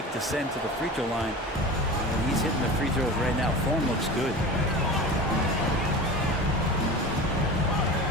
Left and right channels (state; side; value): normal; both; correlation 0.33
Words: to send to the free throw line. And he's hitting the free throws right now. Form looks good.